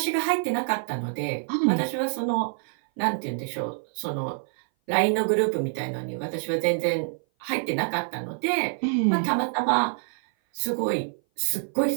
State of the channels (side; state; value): left; silent; 57 dB below the other